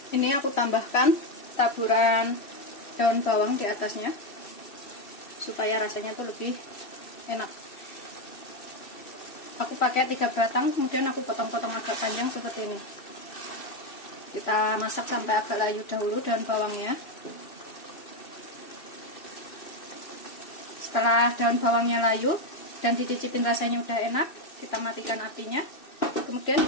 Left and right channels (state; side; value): late; right; 2.7 ms